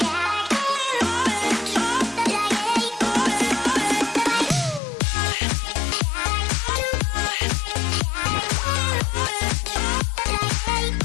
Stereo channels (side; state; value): right; drops out; at 4.8 s